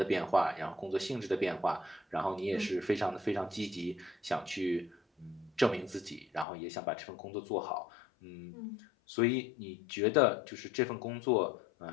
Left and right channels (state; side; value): drops out; right; at 6.5 s